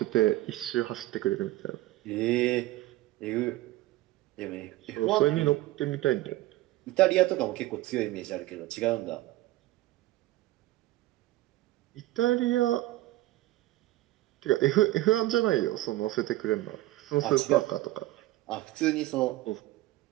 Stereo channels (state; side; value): quieter; left; 16.9 dB